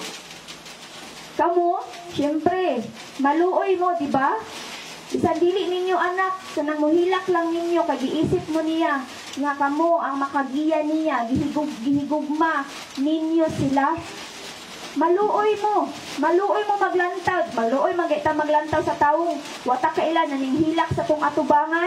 Kamu, syempre, maluoy mo, di ba? Isan dili ninyo anak, kanang mohilak lang ninyo kay giisip mo niya nga kamo ang makagiya niya, gihigugma ninyo sila. Maluoy mo maglantaw, maglantaw sa taong wata kailan naning hilak sa tong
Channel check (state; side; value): identical; both; correlation 1.00